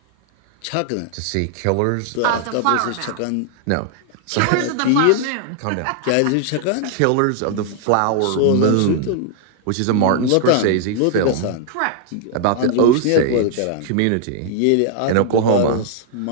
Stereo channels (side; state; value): both; different; correlation -0.01